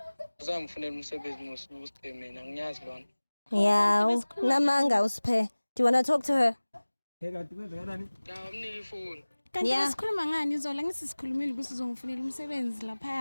Uzangifunela umsebenzi Usiphe mina ngiyazi lona. Yeah, namanga Usiphe. Do you want to talk to her? Ya, umnike ifoni. Kanti Yeah. sikhuluma ngani izola ngisikhulumile ukuthi uzongifunela umsebenzi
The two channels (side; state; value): both; inverted; correlation -1.00